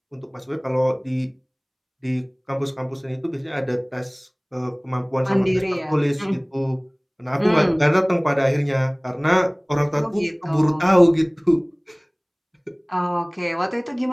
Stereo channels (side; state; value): both; identical; correlation 1.00